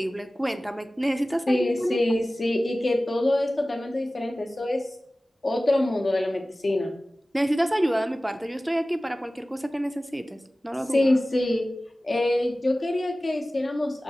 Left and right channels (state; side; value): normal; both; correlation 0.97